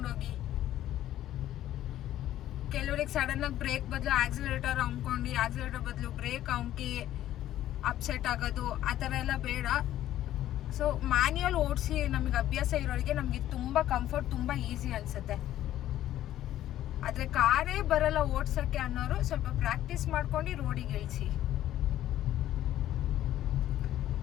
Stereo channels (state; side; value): quieter; right; 12.9 dB